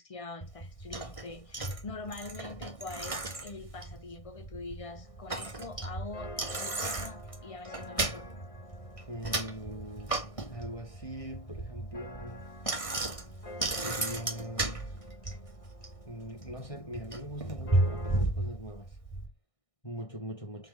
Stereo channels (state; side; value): late; right; 1.6 ms